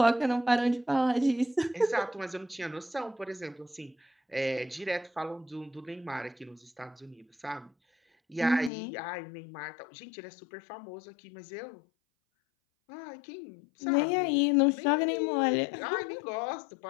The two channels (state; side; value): drops out; right; at 8.7 s